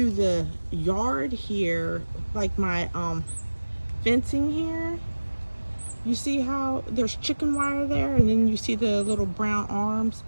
the yard here, like my fencing here. You see how there's chicken wire there, and then you see the little brown arms,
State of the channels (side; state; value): both; inverted; correlation -1.00